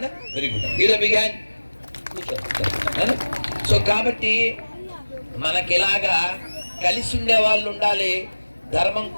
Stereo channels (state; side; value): inverted; both; correlation -1.00